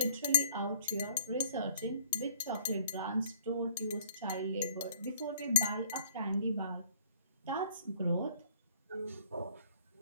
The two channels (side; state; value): both; inverted; correlation -0.54